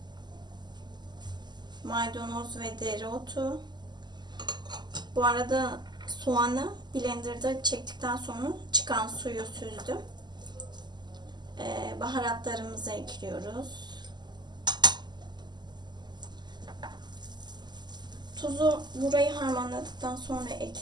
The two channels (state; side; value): late; left; 0.21 ms